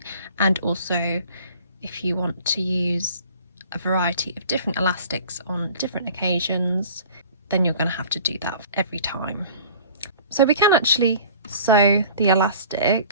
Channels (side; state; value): both; inverted; correlation -0.47